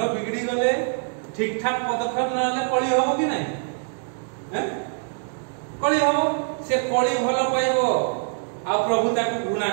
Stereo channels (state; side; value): silent; left; digital silence